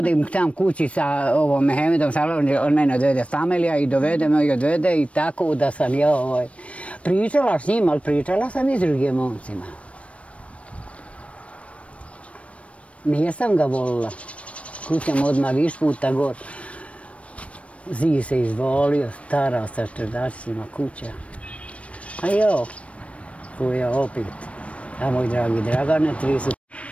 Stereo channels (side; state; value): right; late; 0.063 ms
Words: tam kući sa ovom Mehemedom Salovom, on mene odvede familija i dovede me i odvede i tako da sam ja pričala s njim, ali pričala sam i s drugim momcima. Nijesam ga volila. Kućam odmah viš puta gor. Zid se izvolio, stara sa čerdačicima kuća. A jo, koja opet. A moj dragi Dragane, 3 su.